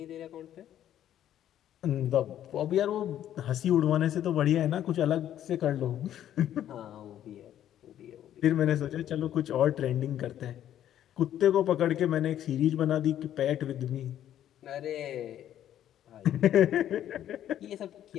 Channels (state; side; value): quieter; right; 11.3 dB